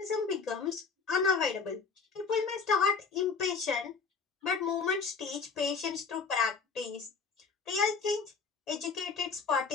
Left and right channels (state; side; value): quieter; right; 5.1 dB